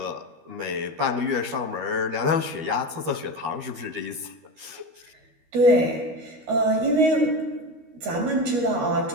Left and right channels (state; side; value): late; left; 13 ms